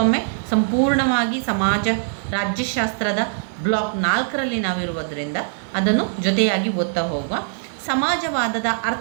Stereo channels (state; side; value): silent; left; 63 dB below the other